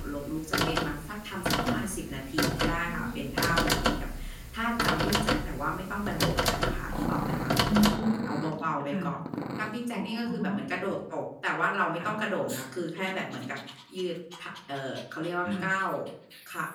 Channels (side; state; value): both; identical; correlation 1.00